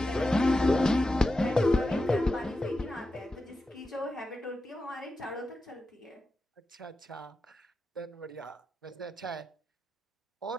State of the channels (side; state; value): both; normal; correlation 0.91